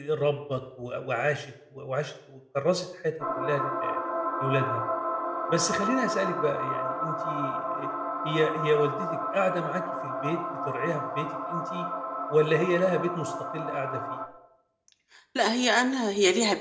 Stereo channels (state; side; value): identical; both; correlation 1.00